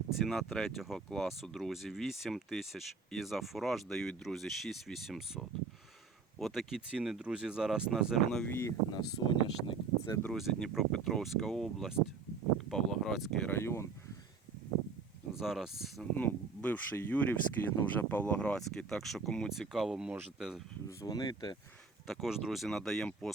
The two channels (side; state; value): left; quieter; 4.9 dB